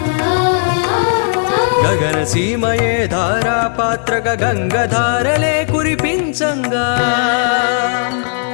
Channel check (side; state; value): right; silent; 69 dB below the other